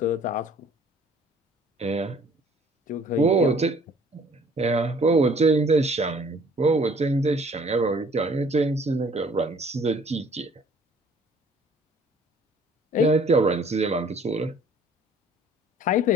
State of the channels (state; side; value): normal; both; correlation 0.55